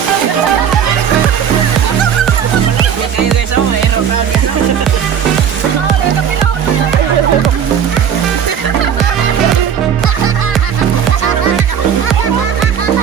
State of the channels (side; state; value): left; quieter; 8.3 dB